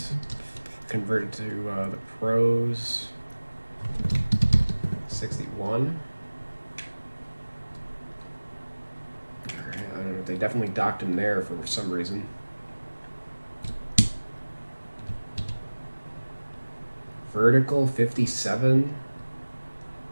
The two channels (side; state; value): both; inverted; correlation -1.00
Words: converted to the pros. 61. I don't know. They definitely docked him there for some reason. Vertical 57.